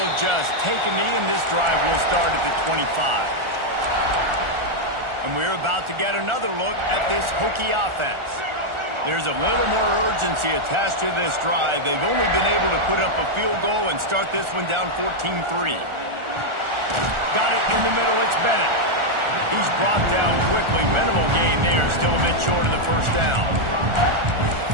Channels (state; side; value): late; left; 1.4 ms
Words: just take a knee, and this drive will start at the 25. And we're about to get another look at this Hokie offense. There's a little more urgency attached to this drive. They've only been able to put up a field goal and start this one down 14-3. Got it in the middle, it's Bennett. He's brought down quickly. Minimal gain there, still a bit short of the first down.